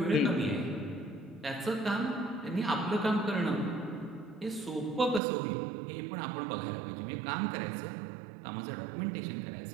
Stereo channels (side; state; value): left; drops out; at 5.2 s